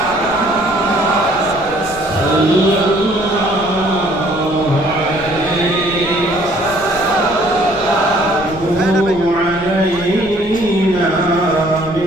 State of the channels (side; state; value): left; noise; rumble, 17 dB below the sound